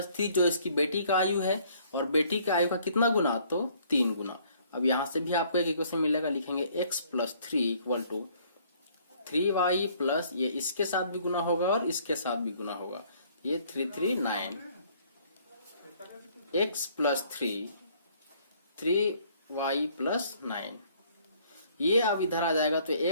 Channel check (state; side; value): inverted; both; correlation -0.61